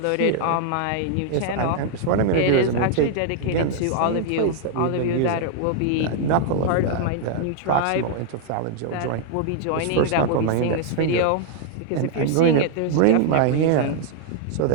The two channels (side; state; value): both; different; correlation 0.00